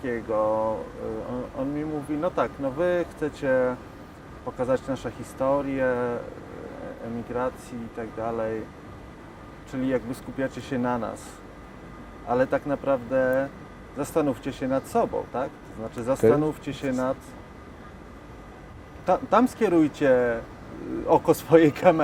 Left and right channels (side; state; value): both; identical; correlation 1.00